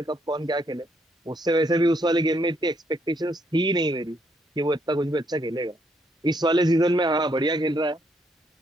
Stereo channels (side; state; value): both; normal; correlation 0.73